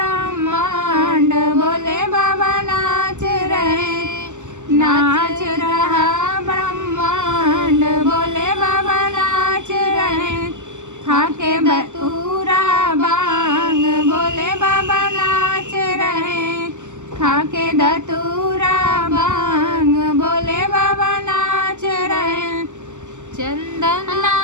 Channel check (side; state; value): left; late; 0.84 ms